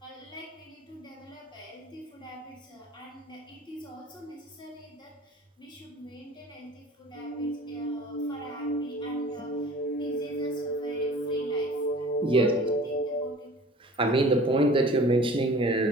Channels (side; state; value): both; normal; correlation 0.45